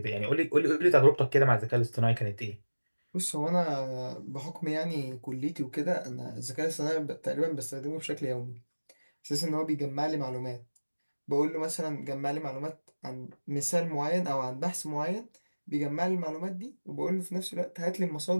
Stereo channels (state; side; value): inverted; both; correlation -1.00